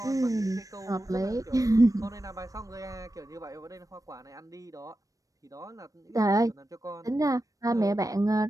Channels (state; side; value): late; left; 0.16 ms